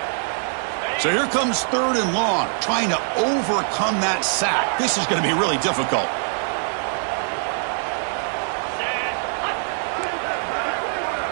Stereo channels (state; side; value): silent; left; 63 dB below the other